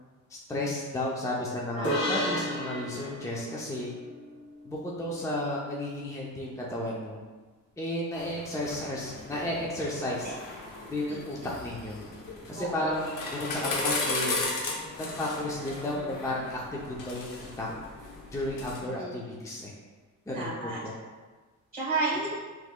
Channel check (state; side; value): normal; both; correlation 0.18